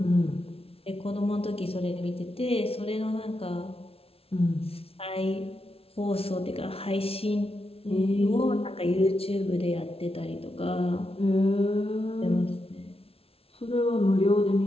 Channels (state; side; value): late; right; 0.28 ms